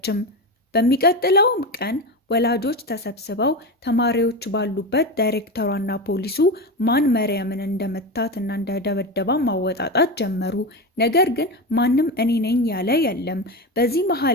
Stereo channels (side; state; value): both; normal; correlation 0.20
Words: በሚቀጥለውም ቀን ወላጆች ተሰብስበው ተማሪዎች ባሉበት ዳይሬክተሯና ፖሊሱ ማን መርየምን እንደመታት እና እንደደበደባ ማወጣጣት ጀመሩ። ነገር ግን ማንም እኔ ነኝ ያለ የለም። በዚህ